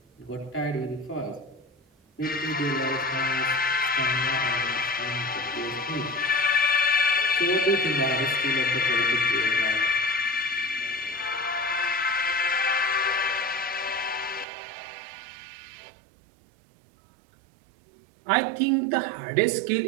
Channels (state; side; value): drops out; left; at 14.5 s